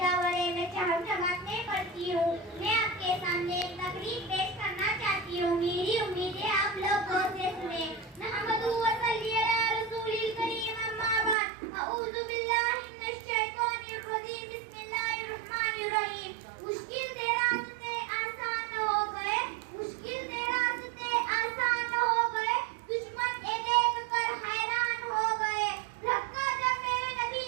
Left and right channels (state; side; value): drops out; left; at 11.4 s